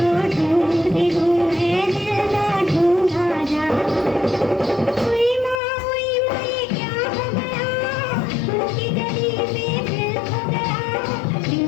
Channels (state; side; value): drops out; right; at 5.6 s